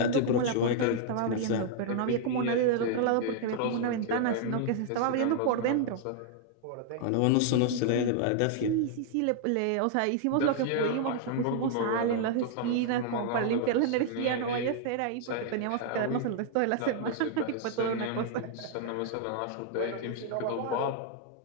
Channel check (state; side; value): different; both; correlation -0.01